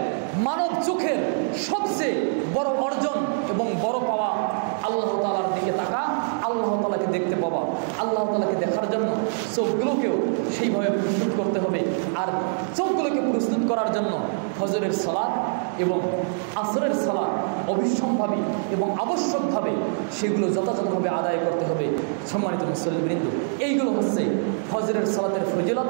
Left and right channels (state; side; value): silent; left; digital silence